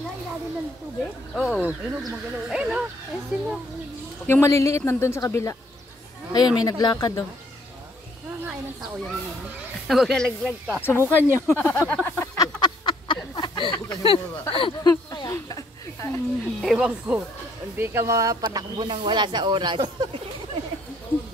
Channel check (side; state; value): both; normal; correlation 0.65